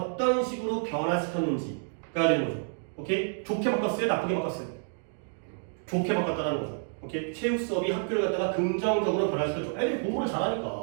식으로 변화시켰는지가 되는 거죠. 오케이? 좋게 바꿨어요? 나쁘게 바꿨어요? 좋게 바꿨다는 거죠. 오케이? 체육 수업이 학교를 갖다가 긍정적으로 변화시켰죠. 애들이 공부를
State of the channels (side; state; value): left; silent; digital silence